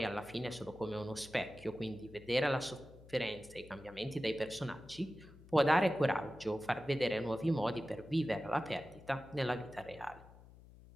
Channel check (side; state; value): left; noise; hum, 20 dB below the sound